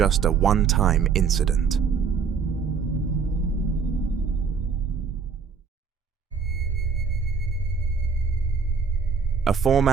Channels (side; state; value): left; quieter; 5.8 dB